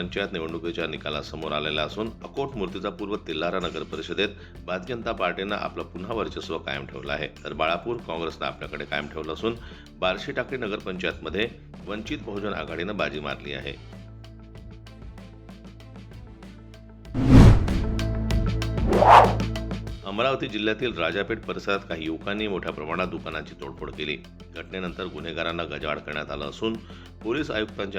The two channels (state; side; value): identical; both; correlation 1.00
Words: निवडणुकीच्या निकालासमोर आलेला असून अकोट मूर्तिजापूर व तेल्हारा नगर परिषदेत भारतीय जनता पार्टीनं आपलं पुन्हा वर्चस्व कायम ठेवलं आहे, तर बाळापूर काँग्रेसनं आपल्याकडे कायम ठेवलं असून बार्शी टाकळी नगरपंचायतमध्ये वंचित बहुजन आघाडीनं बाजी मारली आहे. अमरावती जिल्ह्यातील राजापेठ परिसरात काही युवकांनी मोठ्या प्रमाणात दुकानांची तोडफोड केली. घटनेनंतर गुन्हेगारांना गजाआड करण्यात आलं असून पोलीस